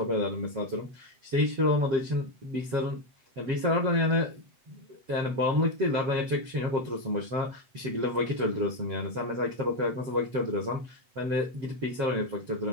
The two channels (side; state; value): left; late; 7.9 ms